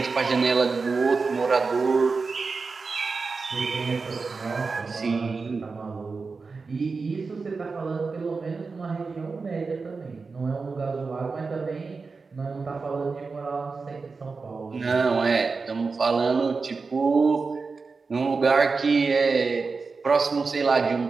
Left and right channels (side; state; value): left; quieter; 4.4 dB